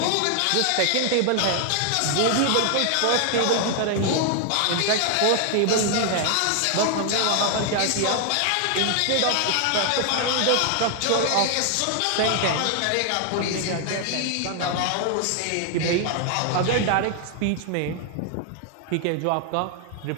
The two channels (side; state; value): both; different; correlation 0.00